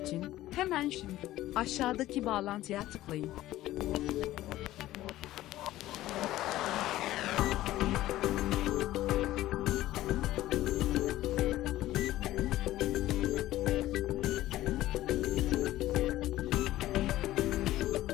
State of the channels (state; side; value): quieter; right; 15.3 dB